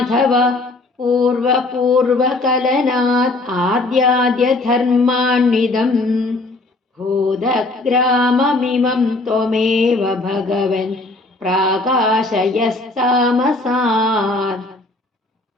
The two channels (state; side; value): quieter; right; 3.0 dB